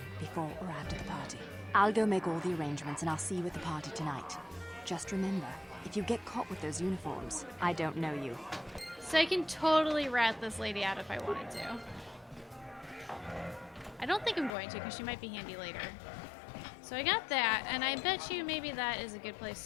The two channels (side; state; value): right; drops out; at 14.6 s